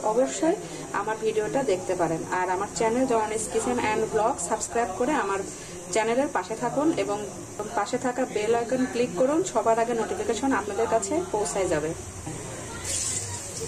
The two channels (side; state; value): both; identical; correlation 1.00